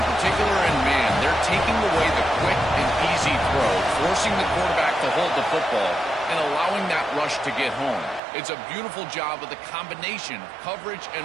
particular in man, they're taking away the quick and easy throw, forcing the quarterback to hold the football and allowing that rush to get home. It's a beautiful job of the combination of coverage and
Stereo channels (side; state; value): left; drops out; at 8.2 s